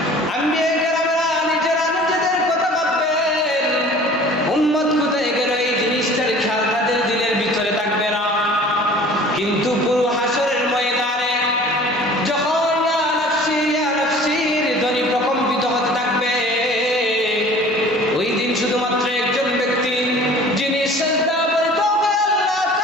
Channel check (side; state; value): both; normal; correlation 0.47